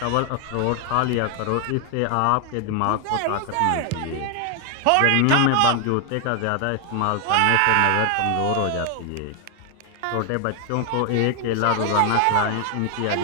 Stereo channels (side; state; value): both; different; correlation 0.00